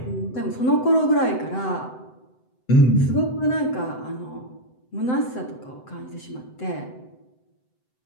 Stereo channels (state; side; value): late; right; 7.8 ms